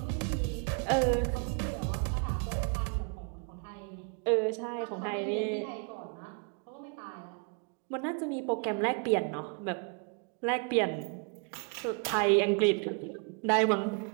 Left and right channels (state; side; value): quieter; left; 37.0 dB